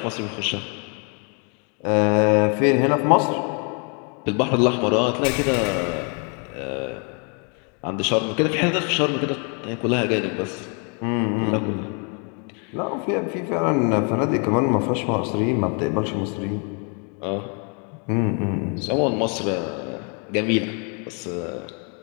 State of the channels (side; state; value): right; quieter; 37.3 dB